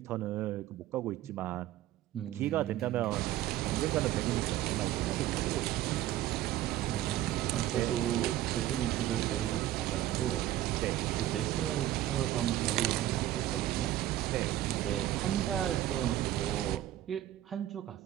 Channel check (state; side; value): quieter; left; 13.7 dB